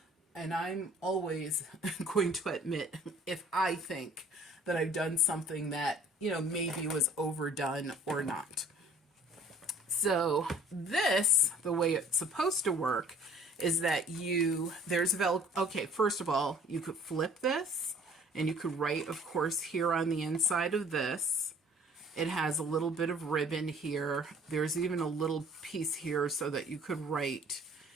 and I'm always going to admit if I think that I've done something that, you know, maybe was overdone or not. So this, the way it's supposed to work is that there's okay, first of all, you could flip this and you could write, of course, here on the inside of this. It has a little bit of ribbon here. There's even a little piece here so that you could write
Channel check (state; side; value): normal; both; correlation 0.53